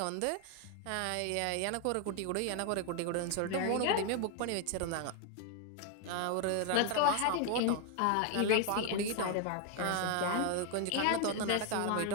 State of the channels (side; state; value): both; different; correlation 0.00